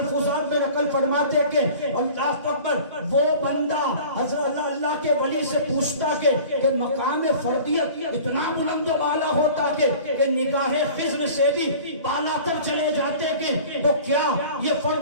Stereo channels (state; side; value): inverted; both; correlation -0.43